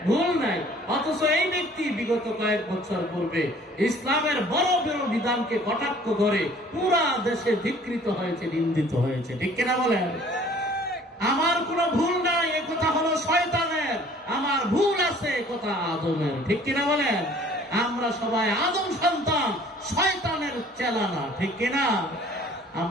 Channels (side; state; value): both; normal; correlation 0.53